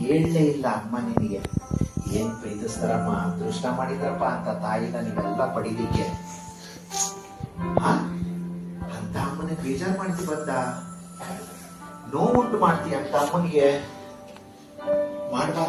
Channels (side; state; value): both; identical; correlation 1.00